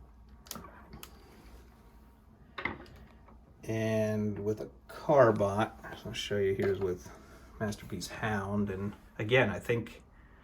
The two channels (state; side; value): identical; both; correlation 1.00